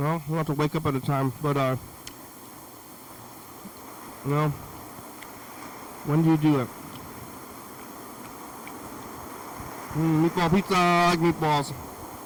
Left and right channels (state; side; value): identical; both; correlation 1.00